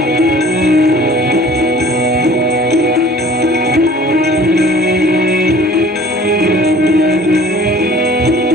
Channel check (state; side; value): normal; both; correlation 0.49